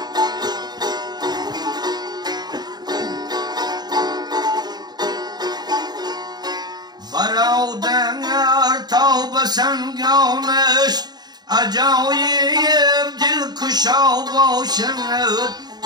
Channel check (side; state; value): left; late; 0.20 ms